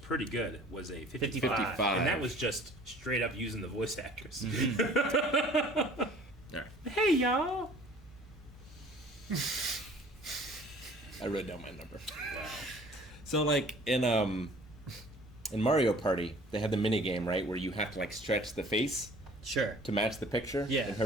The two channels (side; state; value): both; normal; correlation 0.50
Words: good, was a 55. 55. And that was just straight up using the voice actress. Alright. Hey, y'all. I wrote down my number. Wow. So, like, in Mario Party, they had the mini game, right, where you have to, like, stretch the face Sure. to match the picture. Yeah. And